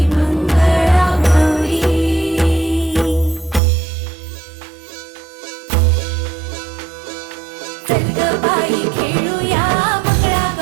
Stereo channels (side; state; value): left; drops out; at 3.6 s